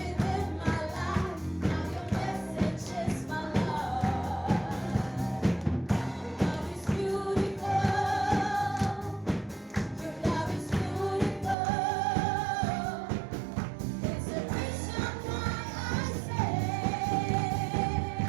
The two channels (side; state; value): left; drops out; at 11.6 s